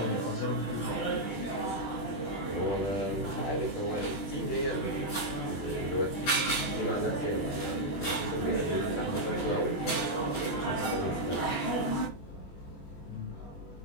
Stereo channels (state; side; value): late; right; 21 ms